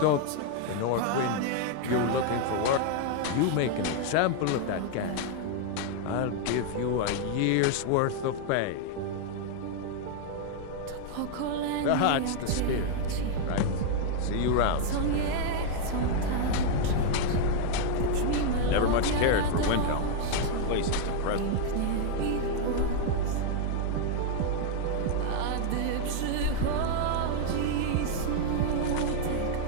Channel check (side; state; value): both; different; correlation 0.00